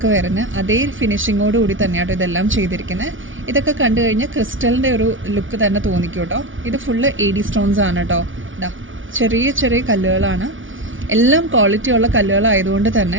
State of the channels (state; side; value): late; left; 0.57 ms